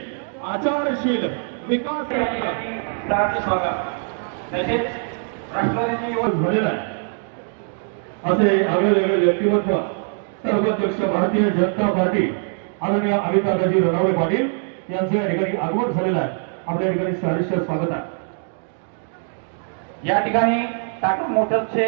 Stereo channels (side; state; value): left; silent; 56 dB below the other